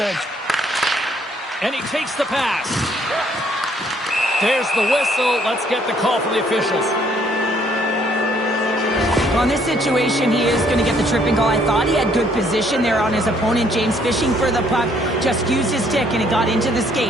And he takes the pass. There's the whistle. Let's get the call from the officials. Well, in this situation, he is going to get the tripping call. I thought he had good position there on his opponent. James fishing for the puck. Just used his stick, and it got into the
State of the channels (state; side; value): normal; both; correlation 0.65